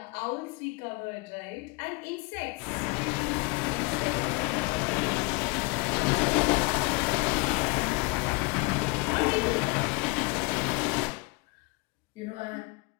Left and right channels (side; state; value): right; quieter; 26.6 dB